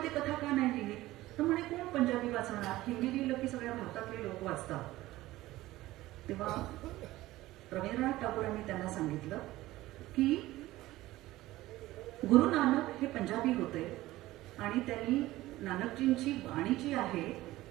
कथा का नाही लिहिली? तर म्हणे कोण पंजाबी वाचणार? हिंदी लिहिलं की सगळ्या भारतातले लोक वाचतात. तेव्हा रवींद्रनाथ टागोरांनी त्यांना सांगितलं की गुरु नानक हे पंजाबी होते आणि त्यांनी नानकजींची वाणी जी आहे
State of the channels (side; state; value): left; quieter; 17.0 dB